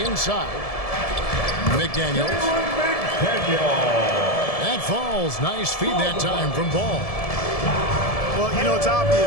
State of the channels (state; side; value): late; right; 1.7 ms